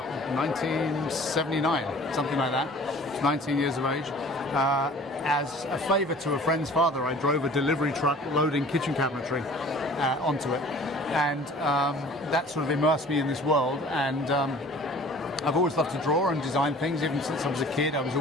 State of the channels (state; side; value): normal; both; correlation 0.48